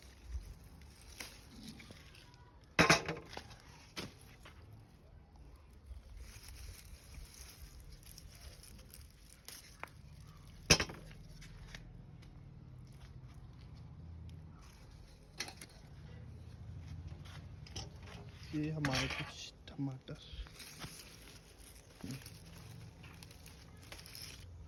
ये हमारे कुछ टमाटर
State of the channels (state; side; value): identical; both; correlation 1.00